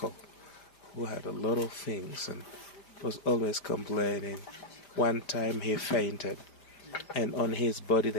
who had a lot of things and was always complaining. One time he fainted, and on his body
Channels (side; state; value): right; late; 5.1 ms